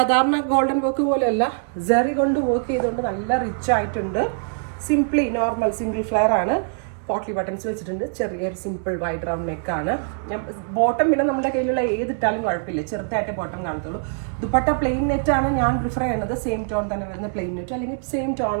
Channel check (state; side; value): silent; left; digital silence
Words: ഗോൾഡൻ വർക്ക് പോലെയല്ല, ജറി കൊണ്ട് വർക്ക് ചെയ്തുകൊണ്ട് നല്ല റിച്ച് ആയിട്ടുണ്ട്. സിംപ്ലി നോർമൽ സിംഗിൾ ഫ്ലെയർ ആണ്. പോട്ട്ലി ബട്ടൺസ് വെച്ചിട്ടുണ്ട്. ചെറിയൊരു സിമ്പിൾ വൈഡ് റൗണ്ട് നെക്കാണ്. ഞാൻ ബോട്ടം പിന്നെ നമ്മുടെ കയ്യിലുള്ള ഏതിട്ടാലും കുഴപ്പമില്ല, ചെറുതായിട്ട് ബോട്ടം കാണത്തുള്ളൂ. ദുപ്പട്ട പ്ലെയിൻ നെറ്റ് ആണ് ഞാൻ പ്രിഫർ ചെയ്യുന്നത്. സെയിം ടോൺ തന്നെ വരുന്ന പ്ലെയിൻ നെറ്റ് അല്ലെങ്കിൽ same tone